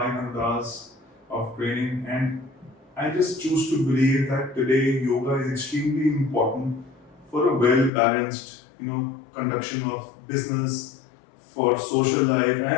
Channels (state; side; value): drops out; right; at 7.9 s